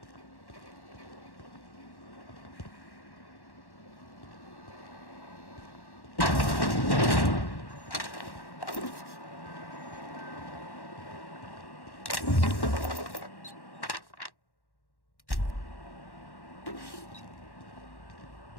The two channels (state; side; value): late; right; 1.1 ms